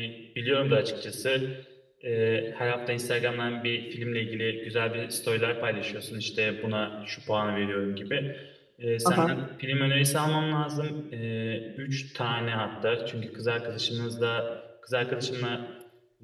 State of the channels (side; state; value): both; identical; correlation 1.00